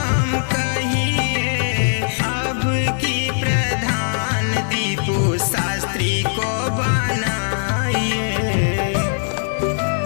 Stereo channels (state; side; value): silent; right; digital silence